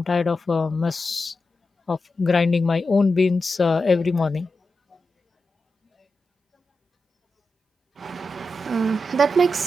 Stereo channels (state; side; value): normal; both; correlation 0.90